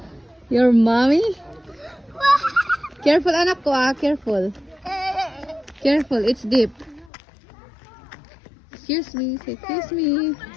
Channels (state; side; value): drops out; right; at 7.1 s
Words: Your mommy? Careful, anak ko ah. Careful. Careful, it's deep. Excuse me. Say, excuse me.